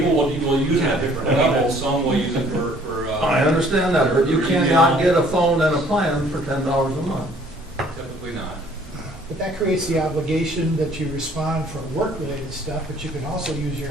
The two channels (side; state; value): both; normal; correlation 0.58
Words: will use it at different levels, some will use it for. I understand that, but you cannot get a phone and a plan for $10 a month. Typically not. But that creates the obligation that you respond for work-related stuff, but you can also use your